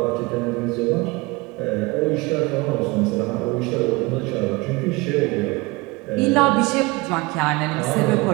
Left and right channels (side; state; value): left; quieter; 23.8 dB